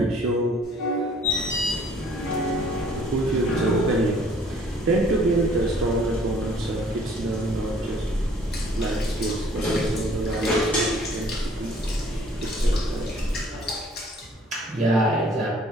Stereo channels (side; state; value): both; normal; correlation 0.57